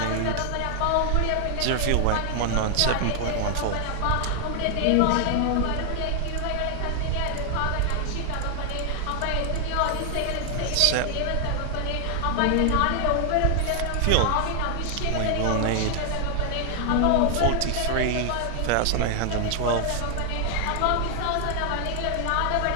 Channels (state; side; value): different; both; correlation 0.00